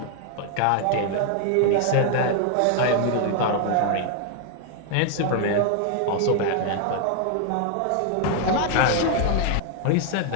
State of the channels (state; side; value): different; both; correlation 0.00